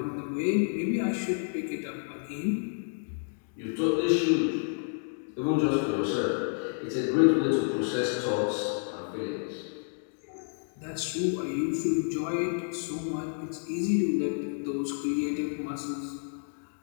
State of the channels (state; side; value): silent; right; digital silence